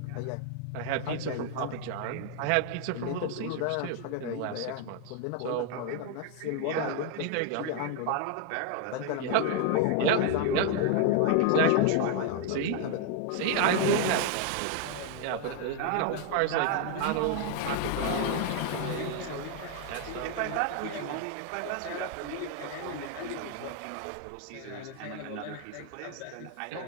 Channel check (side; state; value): both; different; correlation 0.00